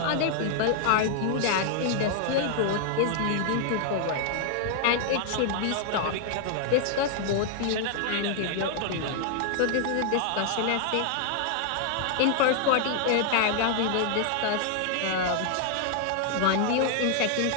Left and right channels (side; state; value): both; different; correlation 0.00